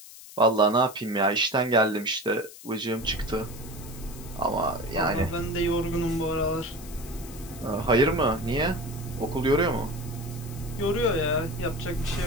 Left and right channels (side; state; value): left; noise; hiss, 17 dB below the sound